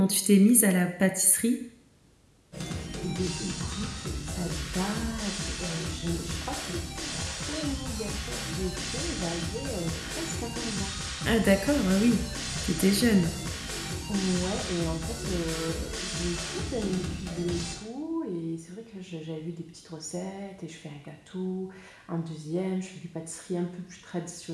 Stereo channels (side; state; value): both; identical; correlation 1.00